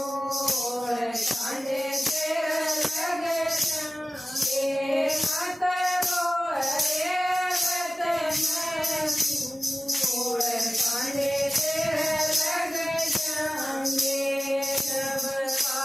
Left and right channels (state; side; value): normal; both; correlation 0.97